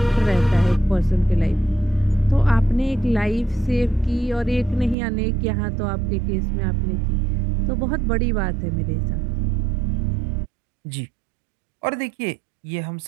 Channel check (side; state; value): left; drops out; at 5.0 s